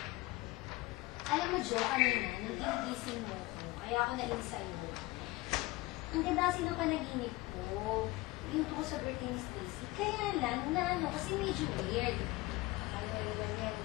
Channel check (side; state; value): right; quieter; 20.2 dB